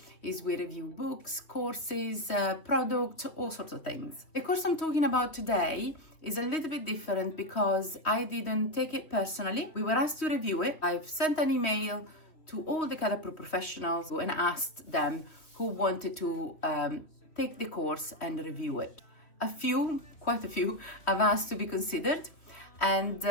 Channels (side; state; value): right; late; 3.1 ms